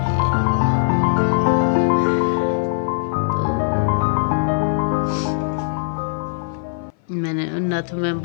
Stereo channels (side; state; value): right; silent; 58 dB below the other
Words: मैंने नथ में